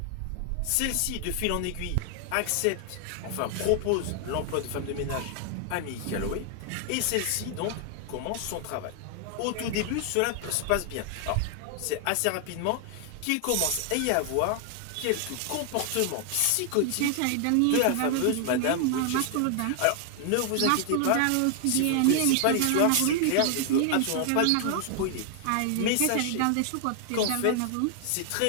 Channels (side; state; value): both; different; correlation 0.00